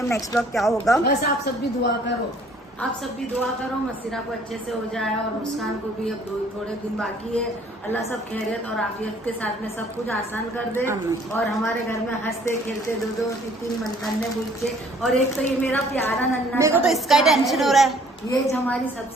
अब नेक्स्ट ब्लॉग क्या होगा। बस आप सब भी दुआ करो, आप सब भी दुआ करो, मसीरा को अच्छे से हो जाए, और मुस्कान को भी अब थोड़े दिन बाकी है। अल्लाह सब खैरियत और आफियत के साथ में सब कुछ आसान कर दे, और हमारे घर में हंसते खेलते 2-2-3 नन्हे बच्चे, और एक तो ये मेरा प्यारा नन्हा, मेरे को तो इसका ही टेंशन हो रहा है। ये हमारी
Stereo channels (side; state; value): both; normal; correlation 0.58